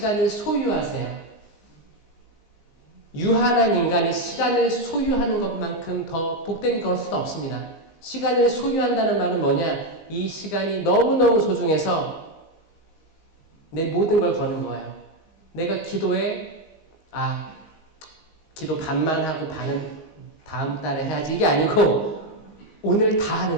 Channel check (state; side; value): late; right; 15 ms